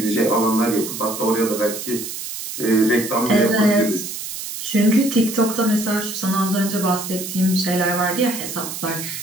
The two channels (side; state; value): right; noise; hiss, 8 dB below the sound